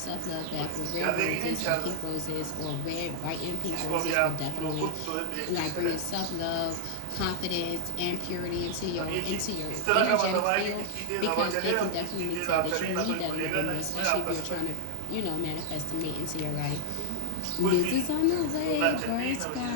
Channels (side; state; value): both; different; correlation 0.00